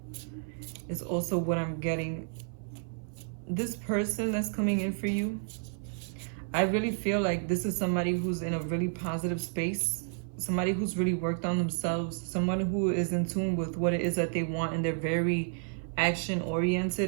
It's also what I'm getting. This person that's coming in for you, I really feel like this is somebody who's in a really positive space, somebody who's really worked on themselves, someone who is in tune with what it is that they want, and they're very action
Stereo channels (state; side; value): silent; left; 57 dB below the other